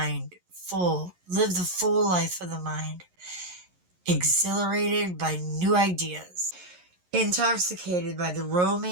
full. Live the full life of the mind. Exhilarated by new ideas. Intoxicated by the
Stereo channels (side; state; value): left; late; 11 ms